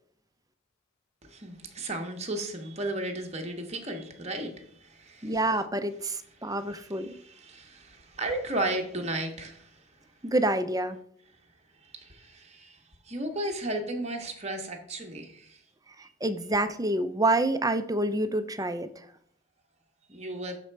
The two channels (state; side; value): normal; both; correlation 0.36